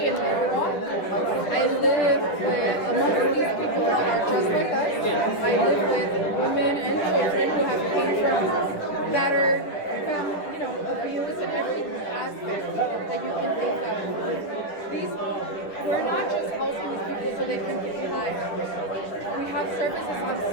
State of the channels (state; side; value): late; right; 10 ms